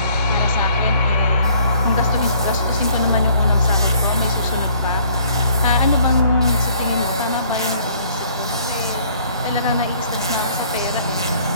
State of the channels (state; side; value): inverted; both; correlation -0.59